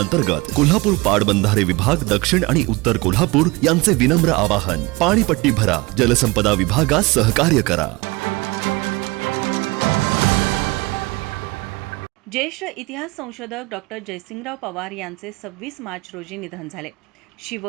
कोल्हापूर पाटबंधारे विभाग दक्षिण आणि उत्तर कोल्हापूर यांचे विनम्र आवाहन. पाणीपट्टी भरा, जलसंपदा विभागास सहकार्य करा. ज्येष्ठ इतिहास संशोधक डॉक्टर जयसिंगराव पवार यांचे 26 मार्च रोजी निधन झाले. शिव,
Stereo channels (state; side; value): quieter; left; 23.4 dB